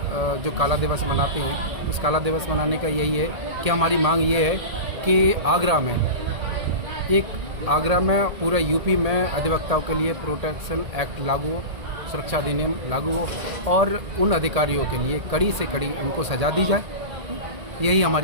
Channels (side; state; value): left; late; 1.7 ms